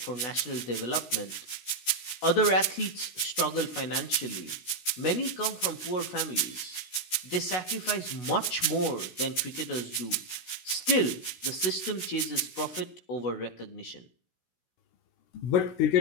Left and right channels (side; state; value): right; late; 16 ms